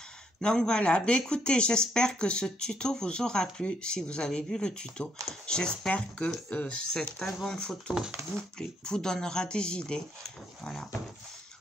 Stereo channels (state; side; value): normal; both; correlation 0.72